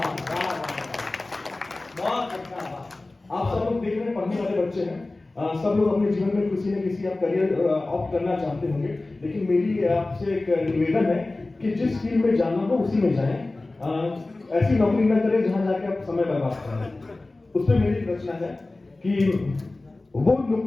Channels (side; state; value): right; quieter; 3.0 dB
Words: बहुत अच्छा। आप सब लोग देख रहे हैं, पढ़ने वाले बच्चे हैं, सब लोग अपने जीवन में किसी न किसी आप करियर ऑप्ट करना चाहते होंगे, लेकिन मेरी आपसे एक निवेदन है कि जिस फील्ड में जाना हो उसी में जाएं, ऐसी नौकरी न करें जहां जाके आप समय बर्बाद करें। उसमें मेरी रचना है कि वो